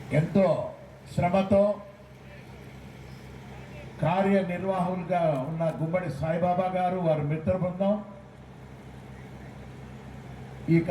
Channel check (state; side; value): identical; both; correlation 1.00